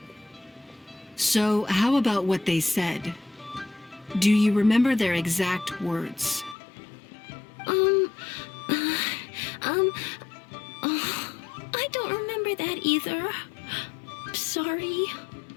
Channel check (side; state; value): right; drops out; at 6.6 s